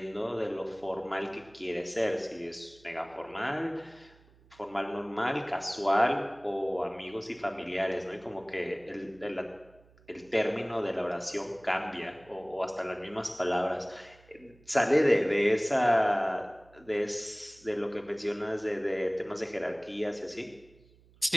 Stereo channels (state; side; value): noise; right; hum, 28 dB below the sound